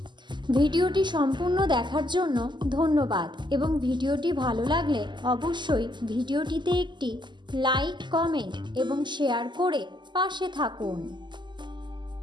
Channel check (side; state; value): left; late; 0.22 ms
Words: ভিডিওটি সম্পূর্ণ দেখার জন্য ধন্যবাদ এবং ভিডিওটি ভালো লাগলে অবশ্যই ভিডিওটিতে একটি লাইক, কমেন্ট এবং শেয়ার করে পাশে থাকুন।